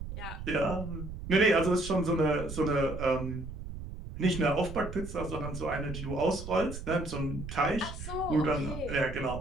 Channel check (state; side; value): noise; right; rumble, 9 dB below the sound